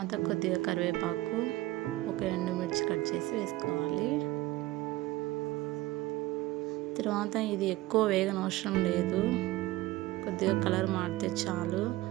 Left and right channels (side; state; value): left; quieter; 17.7 dB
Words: కొద్దిగా కరివేపాకు, ఒక ఎండుమిర్చి కట్ చేసి వేసుకోవాలి. తర్వాత ఇది ఎక్కువ వేగనవసరం లేదు, కొద్దిగా కలర్ మారితే చాలు.